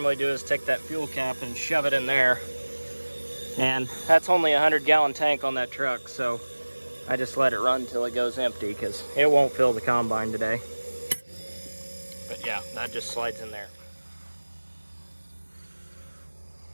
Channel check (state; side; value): inverted; both; correlation -1.00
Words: do is take that fuel cap and shove it in there. And that's only a 100-gallon tank on that truck, so I just let it run till it goes empty because it won't fill the combine today. But yeah, that just slides in there.